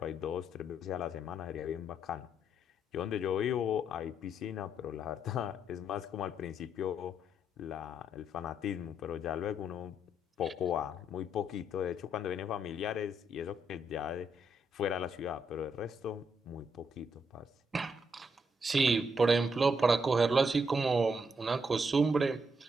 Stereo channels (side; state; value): both; normal; correlation 0.76